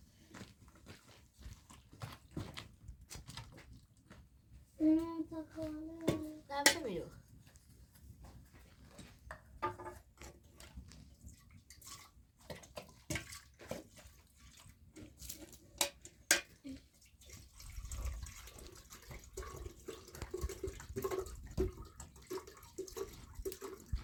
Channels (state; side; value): identical; both; correlation 1.00